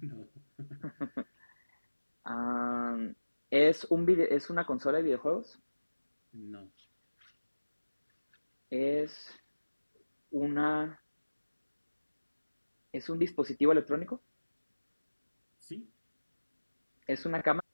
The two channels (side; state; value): both; inverted; correlation -1.00